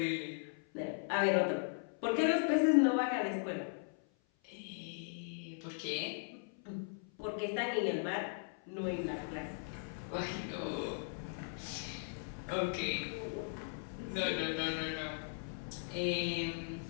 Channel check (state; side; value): silent; right; 52 dB below the other